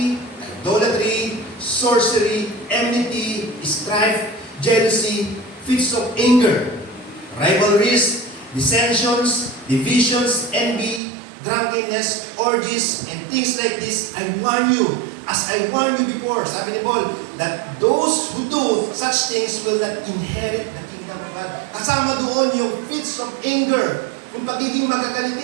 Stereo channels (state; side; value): drops out; left; at 11.0 s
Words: idolatry, sorcery, enmity, strife, jealousy, fits of anger, rivalries, dissensions, divisions, envy, drunkenness, orgies, and things like this. I warn you, as I warned you before, sabi ni Paul, that those who do such things will not inherit the kingdom of God. Kasama doon yung fits of anger, yung pagiging